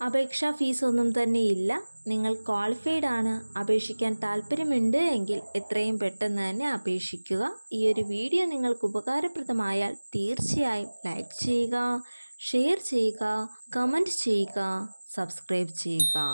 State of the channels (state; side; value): inverted; both; correlation -1.00